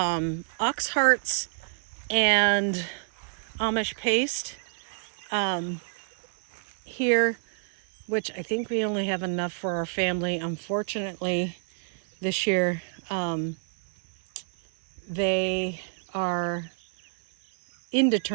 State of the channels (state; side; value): silent; left; digital silence